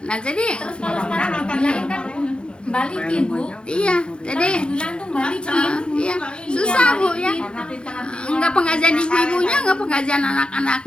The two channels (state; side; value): late; right; 0.054 ms